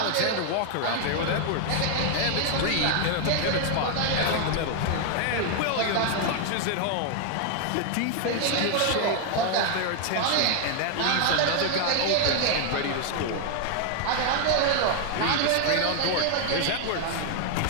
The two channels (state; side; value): different; both; correlation 0.00